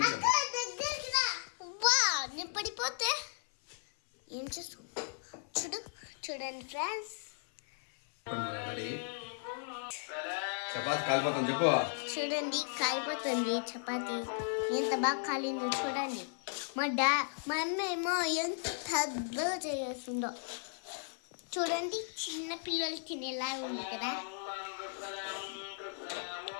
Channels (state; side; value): silent; right; 54 dB below the other